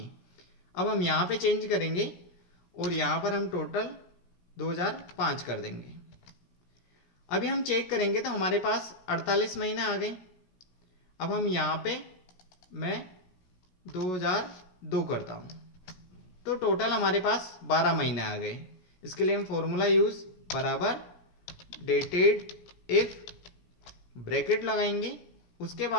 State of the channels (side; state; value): right; late; 16 ms